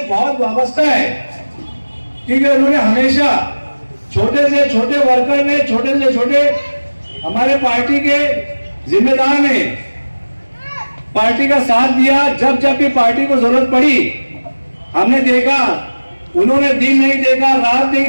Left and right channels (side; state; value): both; inverted; correlation -1.00